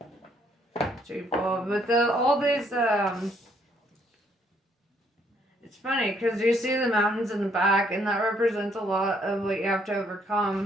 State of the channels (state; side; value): normal; both; correlation 0.68